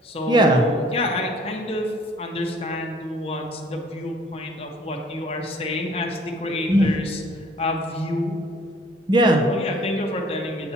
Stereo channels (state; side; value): normal; both; correlation 0.56